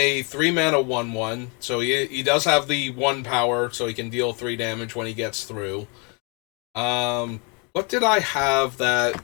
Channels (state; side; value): quieter; right; 33.5 dB